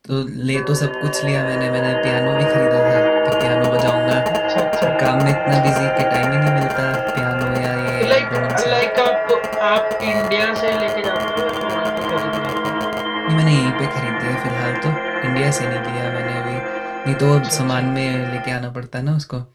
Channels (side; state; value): both; identical; correlation 1.00